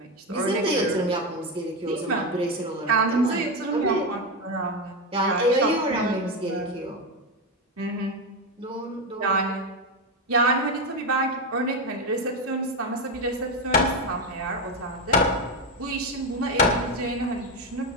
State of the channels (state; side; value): normal; both; correlation 0.12